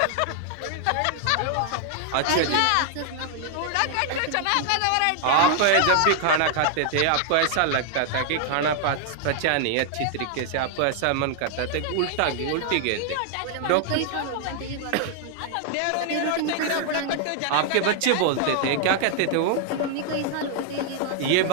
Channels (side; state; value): both; different; correlation 0.00